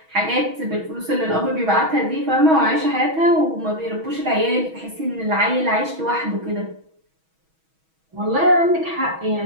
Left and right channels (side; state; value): left; late; 6.2 ms